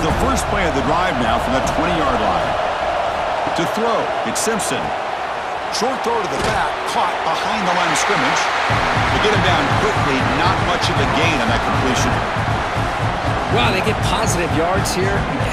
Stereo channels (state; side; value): identical; both; correlation 1.00